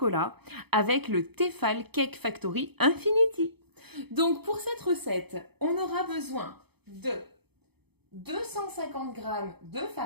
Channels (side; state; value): left; late; 0.98 ms